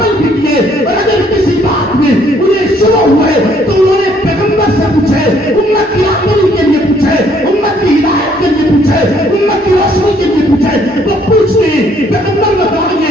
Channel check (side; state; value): both; normal; correlation 0.65